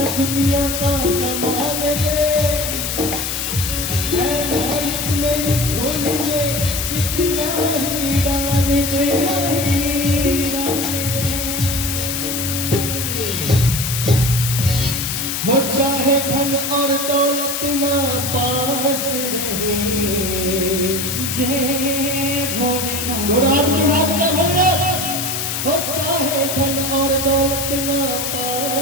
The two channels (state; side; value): noise; left; hiss, 2 dB below the sound